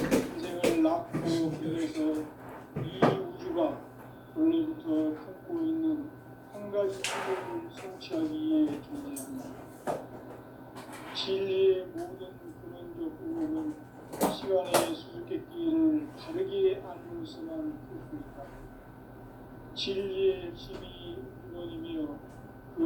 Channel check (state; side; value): identical; both; correlation 1.00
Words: 낳고 길러서 이 우주가 원래부터 품고 있는 한 가지 뜻을 성취하기 위해 존재한다. 진리의 모든 근원적 의혹은 시간의 수수께끼를 다르게 알면서만 풀 수 있다. 진리의 핵심이 근원이며